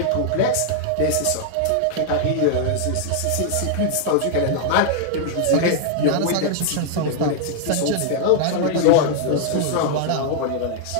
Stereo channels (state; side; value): different; both; correlation -0.01